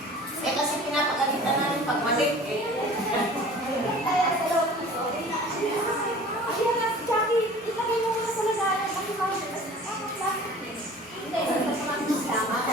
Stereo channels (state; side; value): normal; both; correlation 0.44